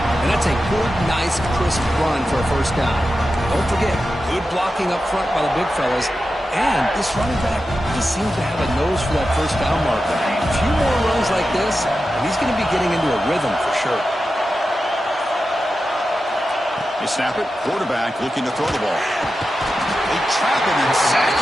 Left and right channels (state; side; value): normal; both; correlation 0.91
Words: And that's a good, nice, crisp run for a first down. Don't forget, good blocking up front by the big fellas. And this running back, he seems to have a nose for that first down marker. A few more runs like this, and he's going to be getting into a rhythm for sure. They snap it. Quarterback looking to throw the ball. They trap him and sack